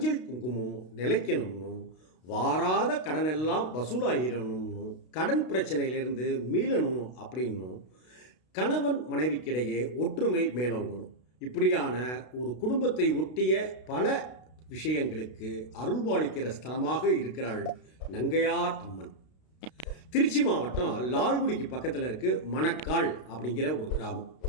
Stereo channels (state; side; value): late; right; 32 ms